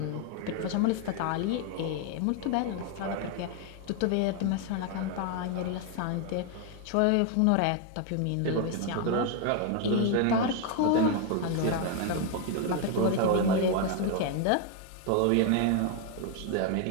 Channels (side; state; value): both; different; correlation 0.01